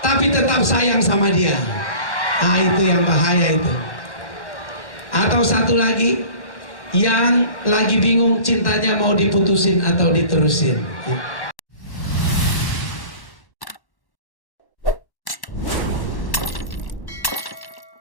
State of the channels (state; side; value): late; right; 1.1 ms